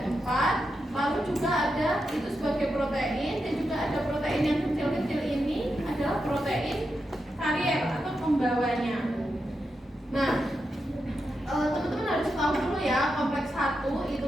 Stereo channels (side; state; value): both; normal; correlation 0.87